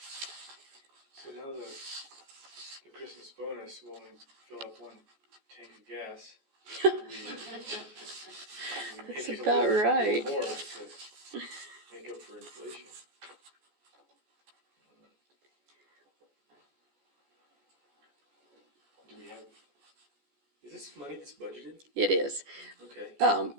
So now the Christmas bonus will only fill up one tank of gas. We That's make it a about little right. more to make up for inflation. Do we have, is this money that's budgeted? It is. Okay.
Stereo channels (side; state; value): left; late; 14 ms